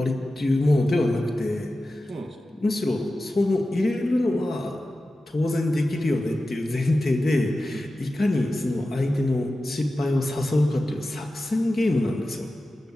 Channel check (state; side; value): normal; both; correlation 0.94